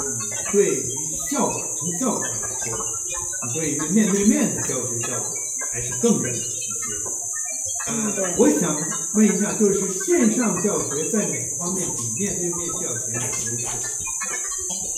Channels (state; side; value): identical; both; correlation 1.00